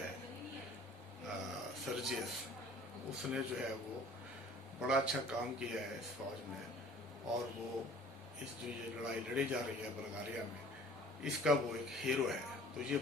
सर्जियस, उसने जो है वो बड़ा अच्छा काम किया है इस फौज में। और वो इस जो ये लड़ाई लड़ी जा रही है बल्गारिया में, इसका वो एक हीरो है। तो ये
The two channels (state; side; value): normal; both; correlation 0.50